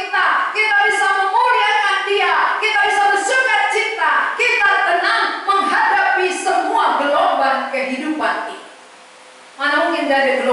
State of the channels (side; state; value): both; identical; correlation 1.00